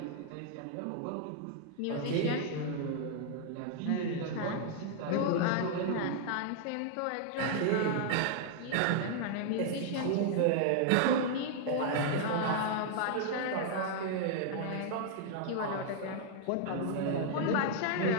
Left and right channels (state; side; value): different; both; correlation 0.00